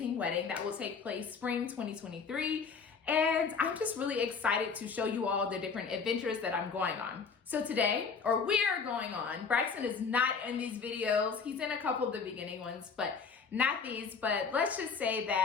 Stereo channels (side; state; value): right; quieter; 5.4 dB